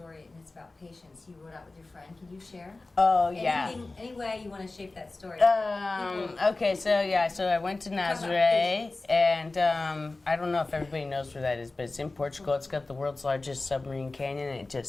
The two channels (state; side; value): quieter; right; 3.3 dB